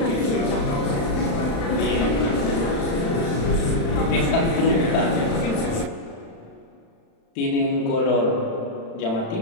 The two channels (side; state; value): right; late; 35 ms